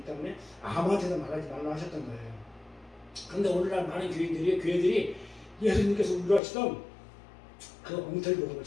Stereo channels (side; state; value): right; drops out; at 6.4 s